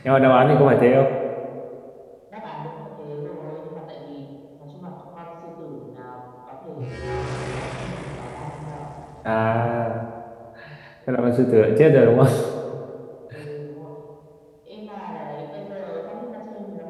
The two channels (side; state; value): both; identical; correlation 1.00